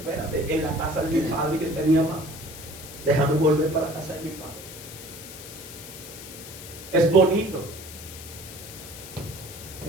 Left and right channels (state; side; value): noise; left; hiss, 13 dB below the sound